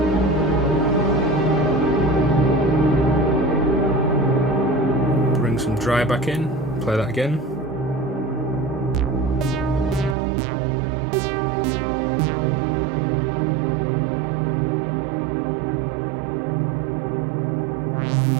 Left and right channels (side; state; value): left; drops out; at 10.2 s